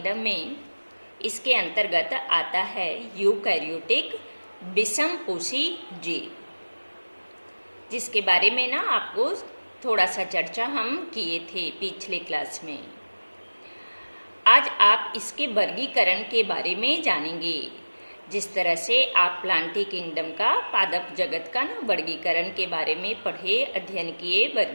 में इसके अंतर्गत आता है यूकैरियोटिक विषमपोषी जीव, जिसके बारे में ना आपको थोड़ा सा चर्चा हम किए थे पिछले क्लास में। आज आप इसके वर्गीकरण के बारे में जानेंगे। जिस तरह से आप प्लांटी किंगडम का, पादप जगत का ना वर्गीकरण के बारे में पढ़े, अध्ययन किए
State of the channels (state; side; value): inverted; both; correlation -1.00